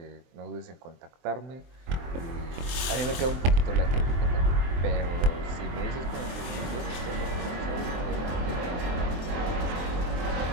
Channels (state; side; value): late; left; 23 ms